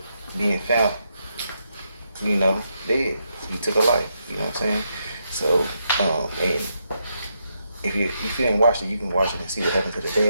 being found, you know, dead. He took her life, you know what I'm saying? So, and if you didn't watch it, you can watch it and see what happened to the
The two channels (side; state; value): both; inverted; correlation -0.81